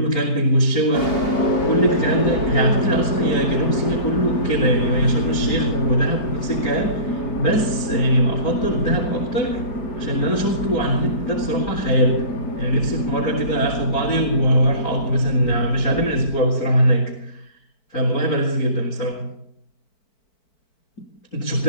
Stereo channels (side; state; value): right; late; 4.5 ms